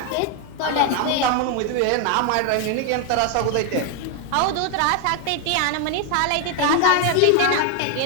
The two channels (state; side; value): different; both; correlation 0.01